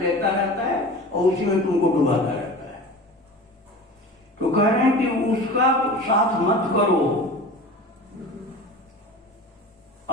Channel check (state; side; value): normal; both; correlation 0.36